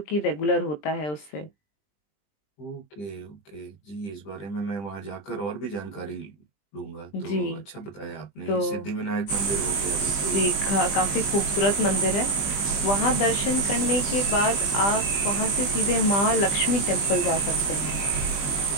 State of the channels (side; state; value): right; late; 20 ms